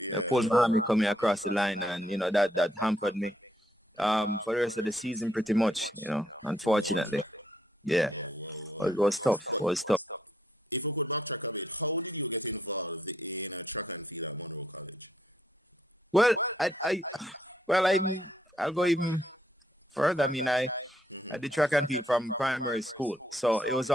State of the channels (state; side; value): normal; both; correlation 0.72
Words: pulled my hammy coming across the line, and that hampered me for the rest of the season pretty much. Unfortunately, yeah, Whoa. it was tough. But It was tough. if we could backtrack a bit, how did you get involved in a track and field at Monroe College? Well, I'll go even further. I mean, I did track and field from primary school, so it was